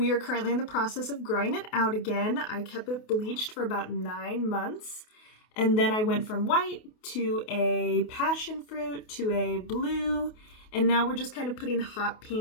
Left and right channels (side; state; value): right; late; 28 ms